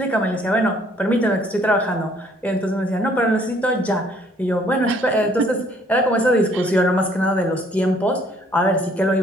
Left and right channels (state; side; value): normal; both; correlation 0.62